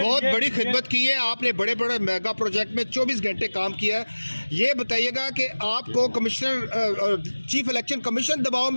बड़ी खिदमत की है, आपने बड़े बड़े मेगा प्रोजेक्ट में 24 घंटे काम किया है। ये बताइएगा कि आपको चीफ इलेक्शन कमीशन दबाव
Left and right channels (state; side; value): inverted; both; correlation -1.00